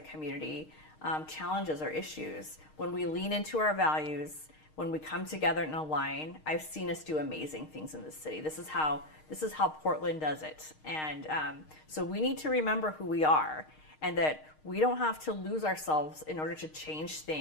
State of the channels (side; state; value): right; late; 6.5 ms